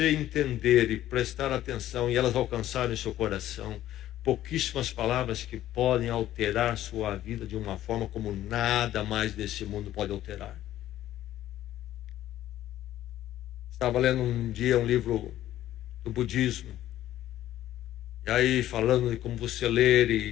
entender e prestar atenção e elas alcançarem o seu coração, pouquíssimas palavras que podem alterar sua vida de uma forma como nada mais desse mundo pode alterar. Estava lendo um dia um livro do budismo, e aí falando de como você ler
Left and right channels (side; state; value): right; quieter; 13.3 dB